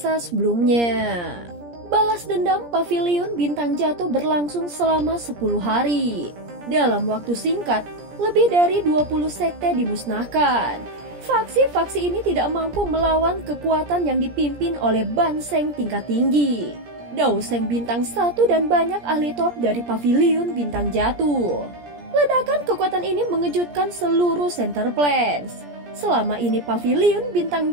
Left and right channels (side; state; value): left; late; 17 ms